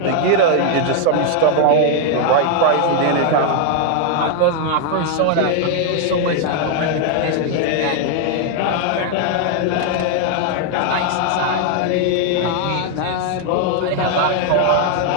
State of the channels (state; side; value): different; both; correlation 0.00